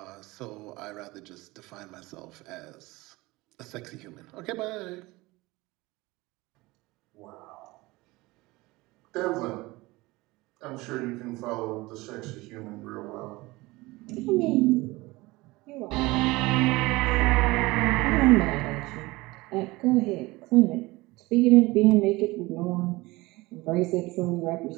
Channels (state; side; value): quieter; left; 21.3 dB